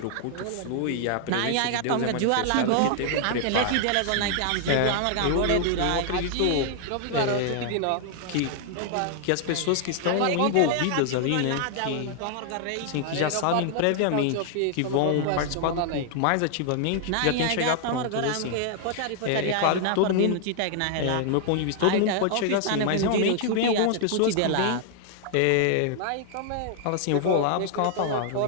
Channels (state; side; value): different; both; correlation -0.01